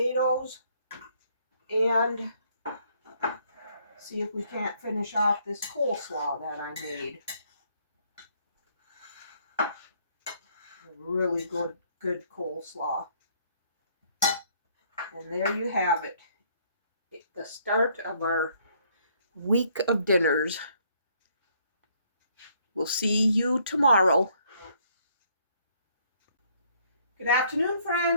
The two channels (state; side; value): inverted; both; correlation -0.66